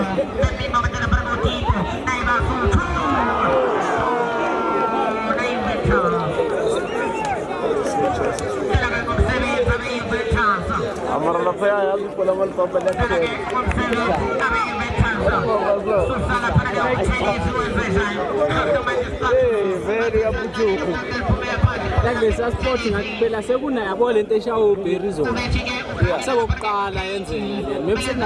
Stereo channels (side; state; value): both; identical; correlation 1.00